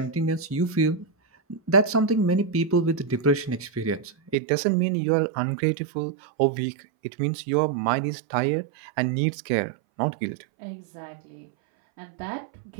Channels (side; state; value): left; drops out; at 4.4 s